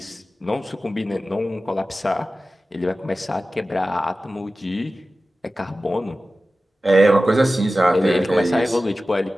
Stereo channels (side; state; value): both; normal; correlation 0.95